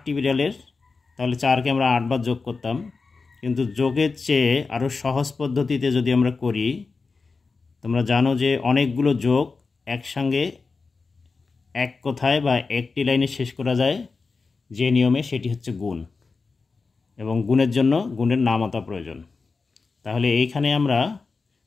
বিড়ালের, তাহলে 4কে আমরা 8 বার যোগ করতাম। কিন্তু যোগের চেয়ে আরও সহজ পদ্ধতিতে যদি আমরা করি, তোমরা জানো যে অনেকগুলো যোগ একসঙ্গে এক কথায় বা একটি লাইনে শেষ করা যায় যে নিয়মে, সেটি হচ্ছে গুণ। এবং গুণের জন্য গুণের নামতা প্রয়োজন। তাহলে এইখানে আমরা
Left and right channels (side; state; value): right; quieter; 4.4 dB